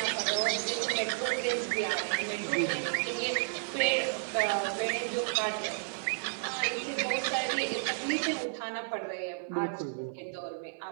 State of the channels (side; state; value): left; silent; 56 dB below the other